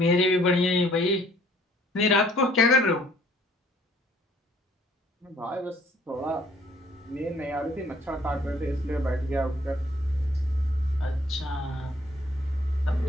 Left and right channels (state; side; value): normal; both; correlation 0.60